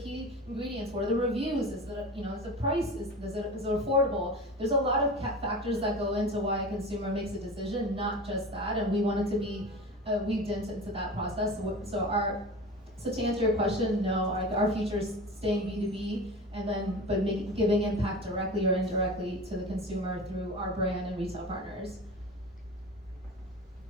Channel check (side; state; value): both; normal; correlation 0.32